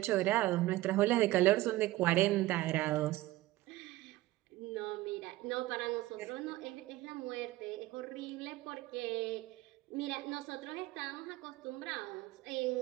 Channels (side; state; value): left; quieter; 17.4 dB